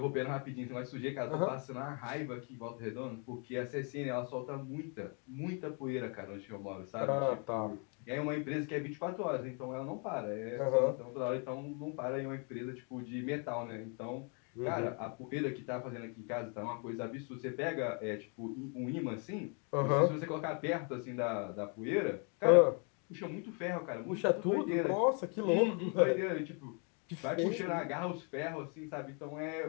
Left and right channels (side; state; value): right; quieter; 37.9 dB